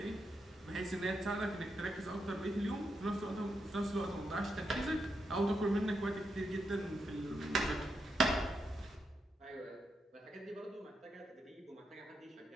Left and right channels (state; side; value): normal; both; correlation 0.83